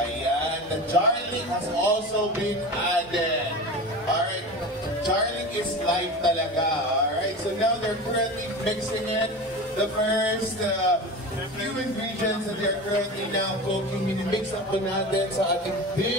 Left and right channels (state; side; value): normal; both; correlation 0.30